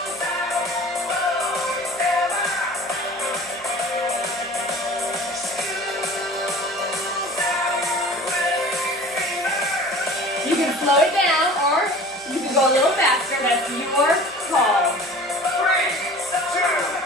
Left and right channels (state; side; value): noise; right; hum, 28 dB below the sound